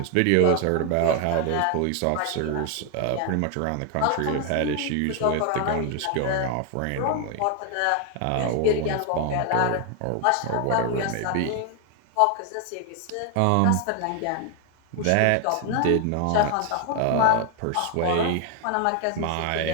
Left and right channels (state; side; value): different; both; correlation 0.00